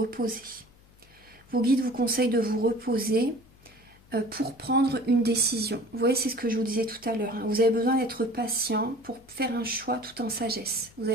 Vos guides vous conseillent de vous reposer pour prendre une décision. Vous voyez, c'est ce que je vous disais tout à l'heure. Hein. Vous avez besoin d'être patient pour faire un choix tout en sagesse. Vous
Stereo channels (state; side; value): noise; left; hum, 27 dB below the sound